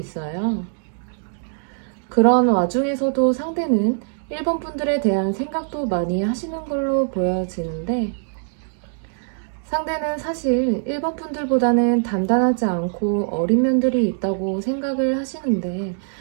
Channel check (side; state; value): left; silent; digital silence